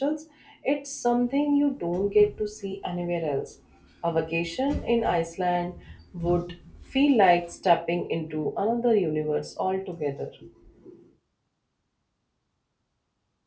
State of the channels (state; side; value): identical; both; correlation 1.00